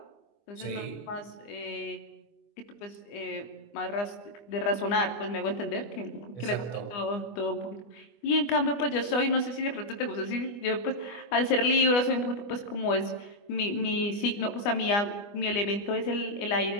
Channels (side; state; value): right; late; 25 ms